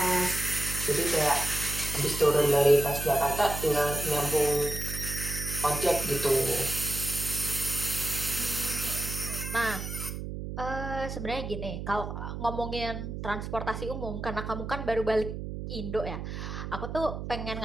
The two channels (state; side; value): noise; right; hum, 6 dB below the sound